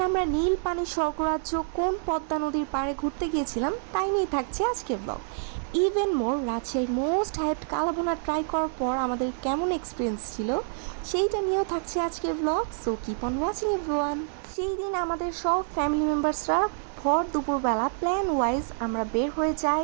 আমরা নীল পানির স্বর্গরাজ্য কোন পদ্মা নদীর পাড়ে ঘুরতে গিয়েছিলাম তাই নিয়ে থাকছে আজকের ব্লগ। ইভেন মোর রাজশাহীর মোস্ট হাইপড কালাভুনা ট্রাই করার পর আমাদের কেমন এক্সপিরিয়েন্স ছিল সেইটা নিয়েও থাকছে আজকের blog. So keep on watching everyone. সেই দিন আমাদের সব ফ্যামিলি মেম্বার্সরা ভর দুপুরবেলা প্ল্যান ওয়াইজ আমরা বের হয়ে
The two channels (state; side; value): silent; left; digital silence